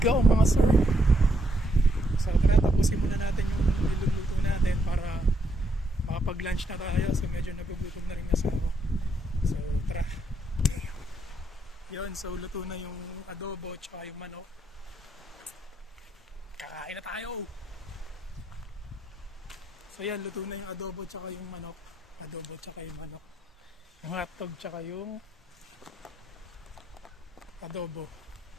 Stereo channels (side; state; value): both; normal; correlation 0.76